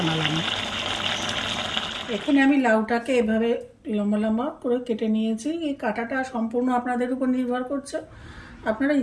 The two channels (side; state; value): both; identical; correlation 1.00